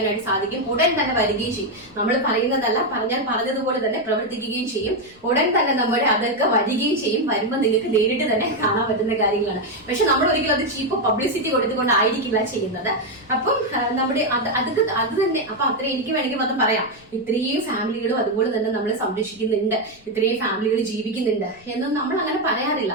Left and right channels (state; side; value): noise; left; rumble, 28 dB below the sound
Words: സാധിക്കും. ഉടൻ തന്നെ വരികയും ചെയ്യും. നമ്മൾ പറയുന്നതല്ല, പറഞ്ഞതുപോലെ തന്നെ പ്രവർത്തിക്കുകയും ചെയ്യും. ഉടൻ തന്നെ നമ്മുടെ അതൊക്കെ വരികയും ചെയ്യും. വരുമ്പോൾ നിങ്ങൾക്ക് നേരിട്ട് തന്നെ കാണാൻ പറ്റുന്ന കാര്യങ്ങളാണ്. പക്ഷെ നമ്മൾ ഒരിക്കലും അത് ചീപ്പ് പബ്ലിസിറ്റി കൊടുത്തുകൊണ്ടായിരിക്കില്ല ചെയ്യുന്നത്. അപ്പം നമ്മുടെ അത് തന്നെ അപ്പൊ അത്ര എനിക്ക് വേണമെങ്കിൽ അത് പറയാം. ഇത്രയും ഫാമിലികളും അതുപോലെ തന്നെ നമ്മളെ സംരക്ഷിക്കുന്നുണ്ട്, ഇത്രയും ഫാമിലികൾ ജീവിക്കുന്നുണ്ട് എന്നൊന്നും നമ്മൾ അങ്ങനെ പറയാറില്ല.